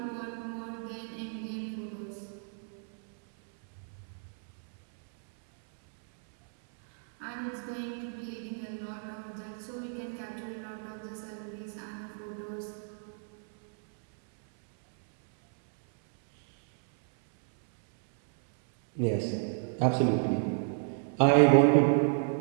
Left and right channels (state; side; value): silent; left; 57 dB below the other